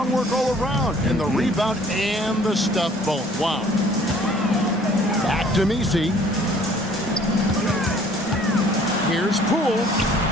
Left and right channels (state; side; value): normal; both; correlation 0.55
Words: work all around. And the rebound and the stuff both. Wow. Back to Messi. Here's Poole.